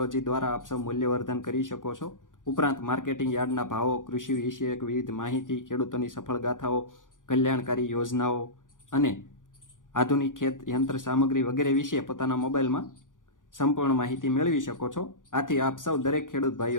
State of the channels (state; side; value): late; right; 0.88 ms